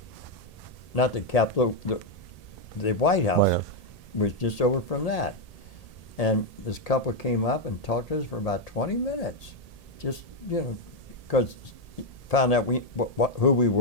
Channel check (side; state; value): right; late; 1.8 ms